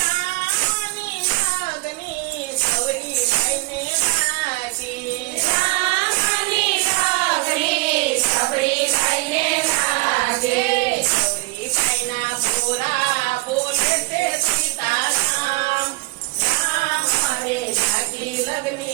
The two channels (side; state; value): left; quieter; 24.7 dB